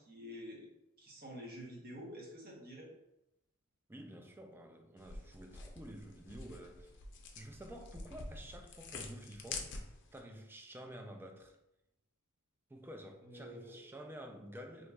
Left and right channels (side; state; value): both; normal; correlation 0.52